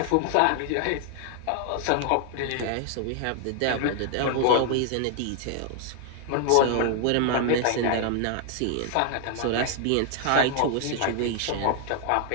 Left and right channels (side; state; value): both; different; correlation 0.00